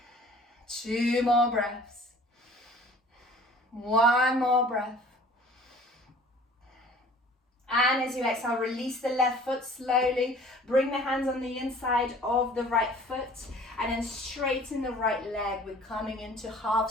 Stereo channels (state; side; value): normal; both; correlation 0.49